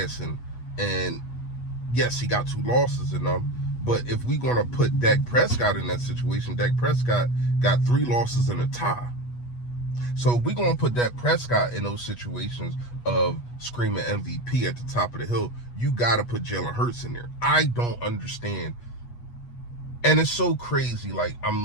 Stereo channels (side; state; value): right; late; 8.3 ms